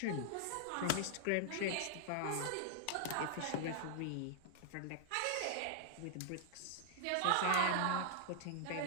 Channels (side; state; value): both; different; correlation -0.01